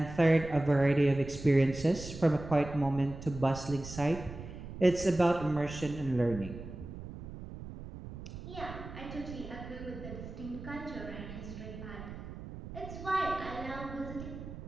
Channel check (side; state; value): right; noise; rumble, 11 dB below the sound